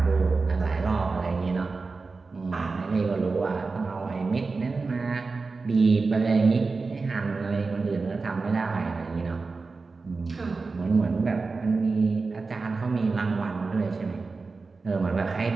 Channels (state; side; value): quieter; left; 4.1 dB